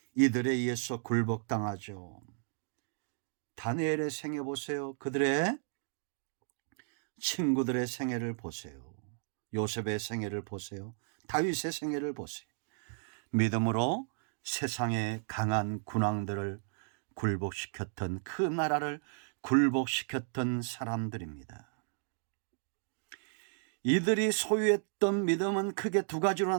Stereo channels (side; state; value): left; silent; digital silence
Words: 이들에 의해서 굴복당하죠. 다니엘의 생애 보세요. 그들의 친구들의 생애를 보세요. 요셉의 생애를 보세요. 다윗의 생애를 보세요. 믿음으로 세상의 강한 군왕들을 굴복시켰던, 그 나라를 굴복시켰던 사람들입니다. 이들이 소유했던 믿음은 크게 두 가지로